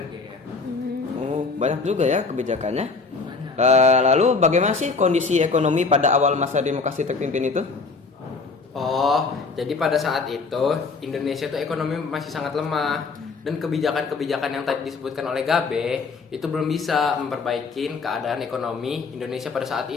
GR. Oh, banyak juga ya kebijakannya. Banyak. Lalu bagaimana sih kondisi ekonomi pada awal masa demokrasi terpimpin itu? Oh, jadi pada saat itu Indonesia tuh ekonomi masih sangat lemah dan kebijakan-kebijakan yang tadi disebutkan oleh Gabe itu belum bisa memperbaiki keadaan ekonomi Indonesia pada saat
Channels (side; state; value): right; quieter; 4.4 dB